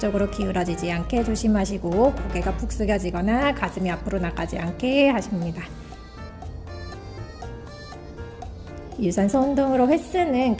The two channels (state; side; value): identical; both; correlation 1.00